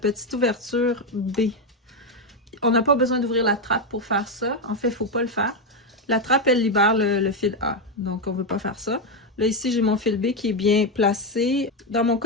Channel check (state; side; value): normal; both; correlation 0.07